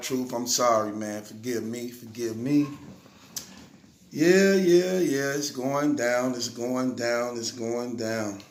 I'm sorry, man. Forgive me. Yeah. It's going down.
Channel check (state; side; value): identical; both; correlation 1.00